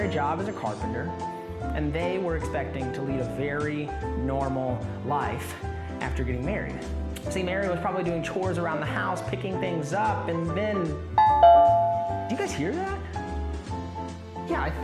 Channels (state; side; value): identical; both; correlation 1.00